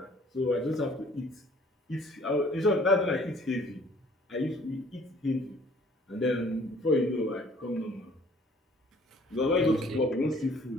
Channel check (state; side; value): normal; both; correlation 0.56